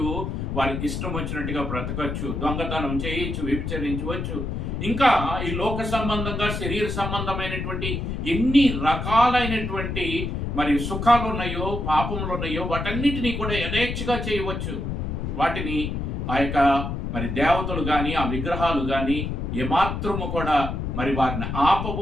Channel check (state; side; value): noise; left; rumble, 3 dB below the sound